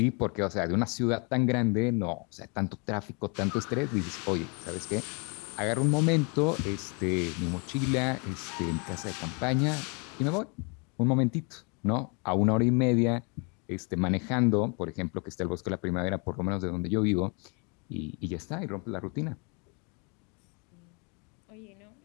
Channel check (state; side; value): quieter; right; 33.6 dB